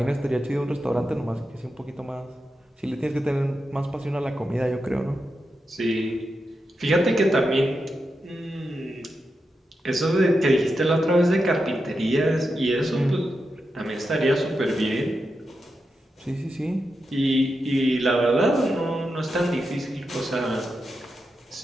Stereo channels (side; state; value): both; normal; correlation 0.88